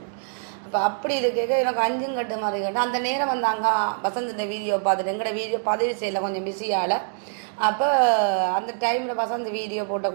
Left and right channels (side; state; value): left; silent; digital silence